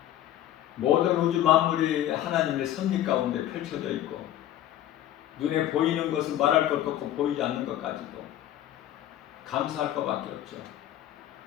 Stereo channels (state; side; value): quieter; right; 12.5 dB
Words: 모든 우주 만물이 하나님의 섭리 가운데 펼쳐져 있고 눈에 보이는 것은 말할 것도 없고 보이지 않는 것까지도 감사할 것밖에 없죠.